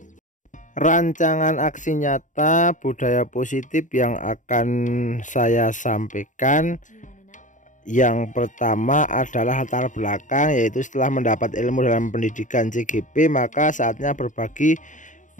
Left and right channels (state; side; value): late; right; 0.37 ms